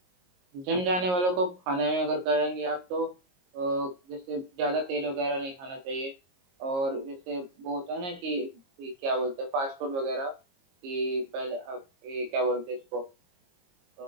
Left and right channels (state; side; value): late; left; 22 ms